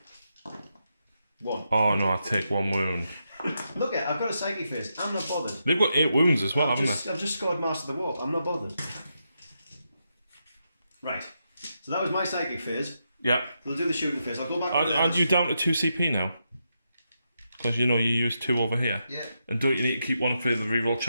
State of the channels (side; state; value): both; inverted; correlation -0.84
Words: 1. Oh no, I take 1 wound. Look I've got a psychic phase. I'm not bothered. They've got 8 wounds as well, haven't they? I've just scored Master of the Warp. I'm not bothered. Right. So that was my psychic phase. Yeah. We'll do the shooting phase. I'll go back. Aren't you down to 2 CP now? Because you know you use 2 over here. Yeah. And don't you need to keep one for the reroll